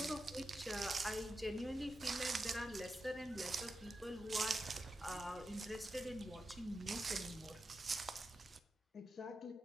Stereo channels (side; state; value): both; normal; correlation 0.89